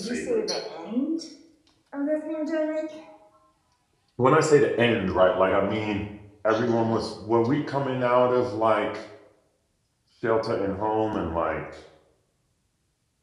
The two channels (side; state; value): both; identical; correlation 1.00